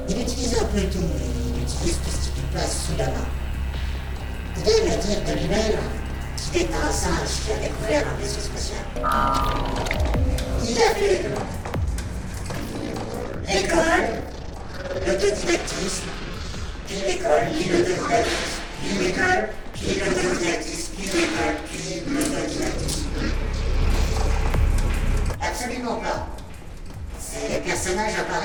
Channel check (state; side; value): identical; both; correlation 1.00